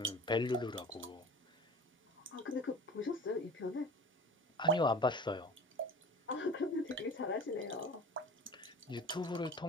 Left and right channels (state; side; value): normal; both; correlation 0.39